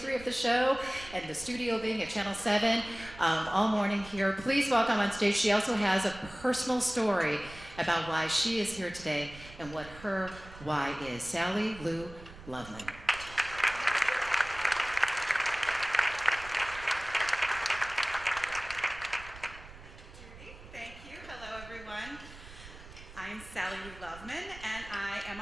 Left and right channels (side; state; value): right; noise; rumble, 17 dB below the sound